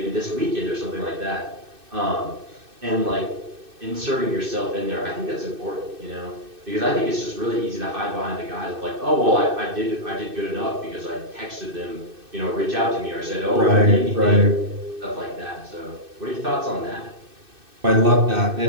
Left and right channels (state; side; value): late; left; 2.6 ms